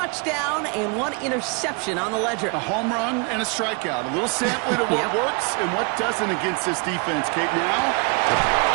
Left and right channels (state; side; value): quieter; left; 33.5 dB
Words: and one interception on the ledger. A home run and a strikeout. A little sampling of what works and what doesn't against this defense, Kate. Now,